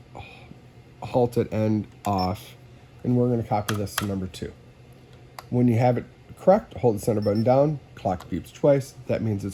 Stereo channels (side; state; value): both; identical; correlation 1.00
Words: halt at end off, and we're going to copy this to number 2. When you have it correct, hold the center button down, clock beeps twice, that means